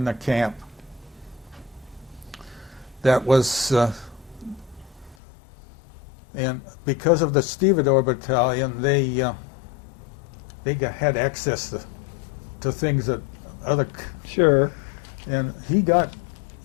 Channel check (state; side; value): drops out; right; at 5.2 s